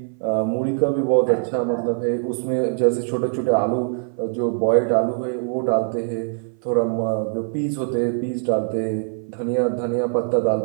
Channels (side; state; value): left; silent; 59 dB below the other